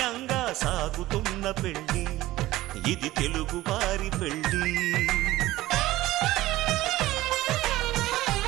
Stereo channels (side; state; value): left; quieter; 16.8 dB